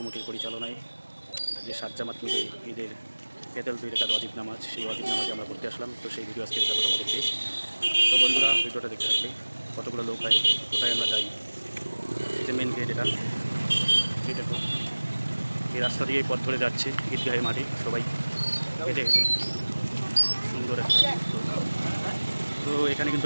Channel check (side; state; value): both; inverted; correlation -1.00